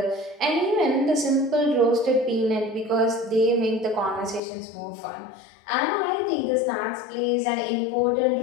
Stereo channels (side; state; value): right; drops out; at 4.4 s